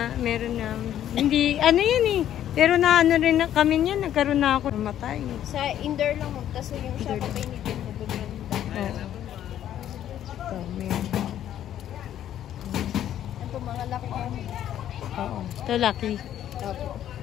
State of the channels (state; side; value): quieter; right; 11.2 dB